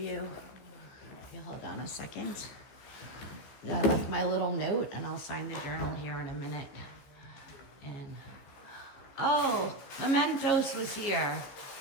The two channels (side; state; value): right; late; 14 ms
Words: If you hold on a second. I left my little note and I'll sign the journal here in a minute. And oh, Mementos was here.